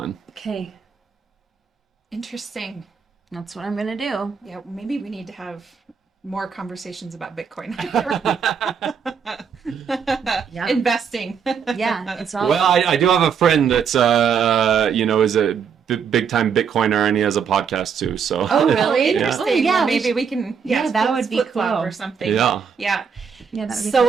Okay, Interesting. that's what I'm gonna do. Yeah, maybe we need to have more conversations about Bitcoin. Yeah. Investing. Yeah, it's all. Well, I do have a friend that's is a big time Bitcoiner, and he has a podcast too. So. Oh, really? Yeah. Interesting. Oh, yeah, Well, maybe we can. that would be flip-flop cool. or something. Yeah. Yeah. Yeah, that would be So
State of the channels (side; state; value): left; quieter; 6.8 dB